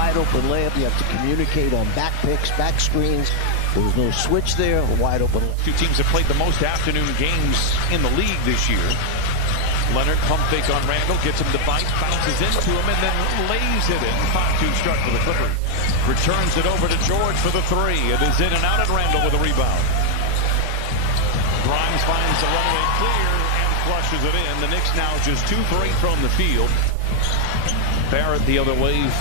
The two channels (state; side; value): different; both; correlation 0.00